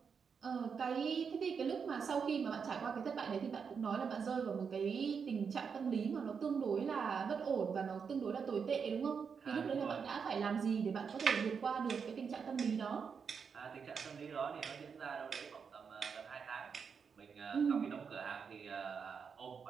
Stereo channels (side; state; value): left; quieter; 6.2 dB